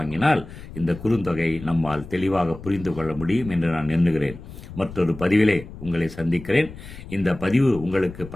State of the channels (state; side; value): noise; left; rumble, 14 dB below the sound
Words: இந்த குறுந்தொகை நம்மால் தெளிவாக புரிந்து கொள்ள முடியும் என்று நான் எண்ணுகிறேன். மற்றொரு பதிவிலே உங்களை சந்திக்கிறேன். இந்த பதிவு உங்களுக்கு